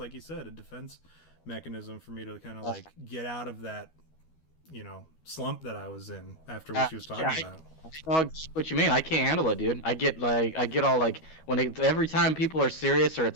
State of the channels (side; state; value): right; late; 12 ms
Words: you said, a defense mechanism for me to kind of like get out of that, you know, slump that I was in after what she was talking about. I know what you mean. I can't handle it, dude. I get all like, every time people are serious or